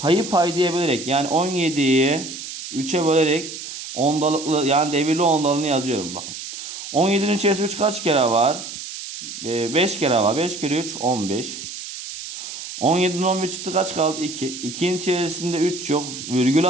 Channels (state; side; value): noise; right; hiss, 10 dB below the sound